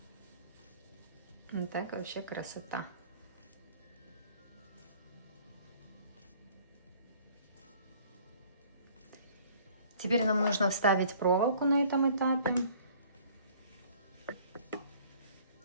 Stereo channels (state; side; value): inverted; both; correlation -0.54